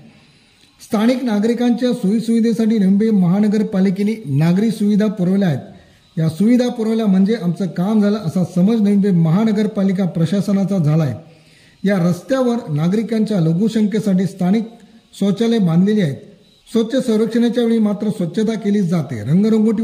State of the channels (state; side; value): identical; both; correlation 1.00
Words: स्थानिक नागरिकांच्या सोयीसुविधेसाठी नंबी महानगरपालिकेने नागरी सुविधा पुरवल्या आहेत। या सुविधा पुरवल्या म्हणजे आमचं काम झालं असा समज नंबी महानगरपालिका प्रशासनाचा झाला आहे। या रस्त्यावर नागरिकांच्या लघुसंख्येसाठी स्थानिक शौचालय बांधलेली आहेत। स्वच्छ सर्वेक्षणाच्या वेळी मात्र स्वच्छता केली जाते,